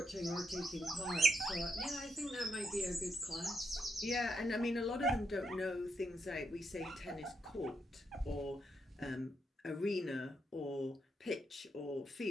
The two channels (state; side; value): normal; both; correlation 0.80